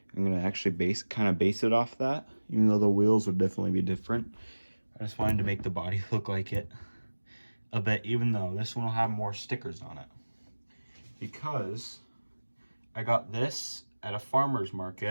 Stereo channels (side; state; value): both; inverted; correlation -1.00